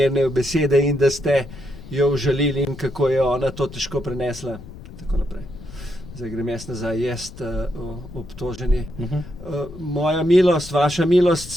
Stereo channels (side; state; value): left; noise; rumble, 15 dB below the sound